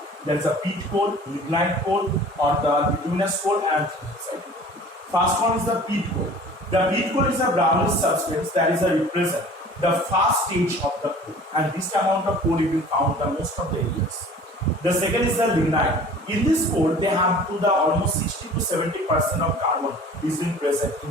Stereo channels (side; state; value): both; normal; correlation 0.46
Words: There is a peat coal, lignite coal, or the bituminous coal and anthracite. First one is the peat coal. The peat coal is a brownish substance that is a represent the first stage of the coal, and this amount of coal is being found in most of the areas. The second is the lignite. In this coal, they have to the almost 60 to 70% of carbon is being present